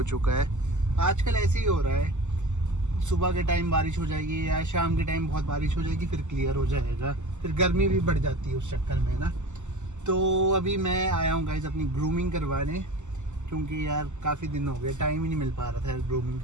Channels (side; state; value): left; late; 0.84 ms